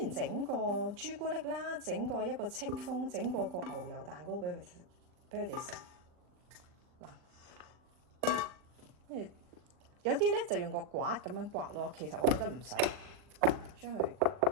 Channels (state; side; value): late; left; 40 ms